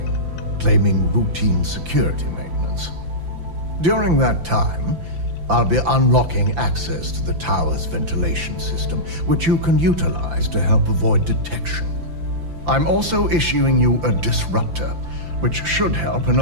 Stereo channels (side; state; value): left; late; 5.9 ms